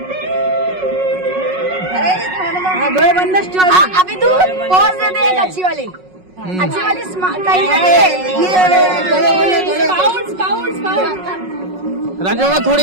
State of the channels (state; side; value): late; left; 5.4 ms